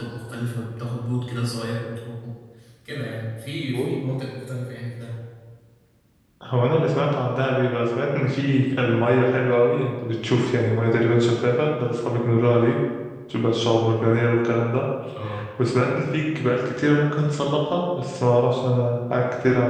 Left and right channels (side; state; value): both; identical; correlation 1.00